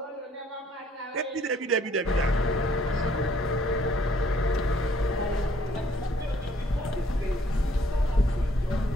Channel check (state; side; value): normal; both; correlation 0.63